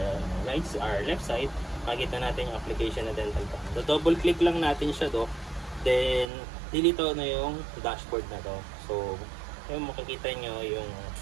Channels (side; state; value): left; drops out; at 6.2 s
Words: left side, makikita natin yung application na dental cam. So, double click lang natin siya do. Then, dilito na yung dashboard na to. So, yung makikita nyo yung